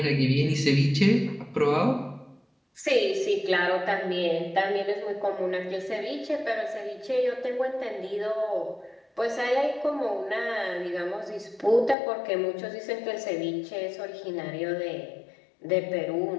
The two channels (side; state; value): right; drops out; at 12.0 s